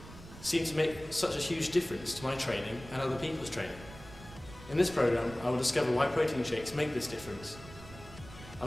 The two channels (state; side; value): noise; right; rumble, 17 dB below the sound